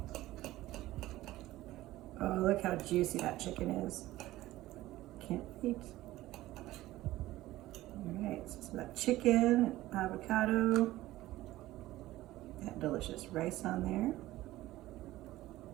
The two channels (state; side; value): quieter; left; 16.4 dB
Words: Oh, look how juicy that chicken is. Can't wait. All right, so some of that chicken, avocado, that delicious rice on there.